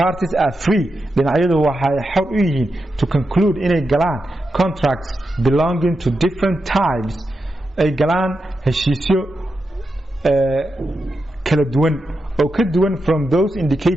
parties are free dhinacyadu waxay xor u yihiin to conclude inay galaan contracts belonging to different types ay galaan heshiisyo kala duwan oo ka duwan from those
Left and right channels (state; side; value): normal; both; correlation 0.87